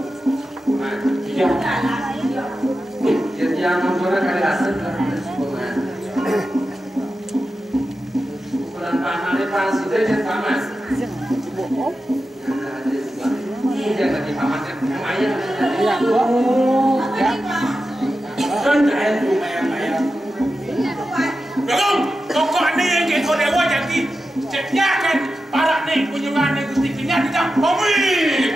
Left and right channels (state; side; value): normal; both; correlation 0.91